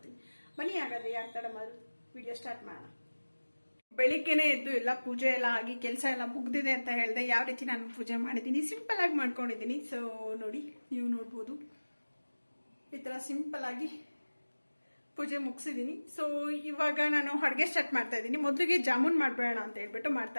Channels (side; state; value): both; inverted; correlation -1.00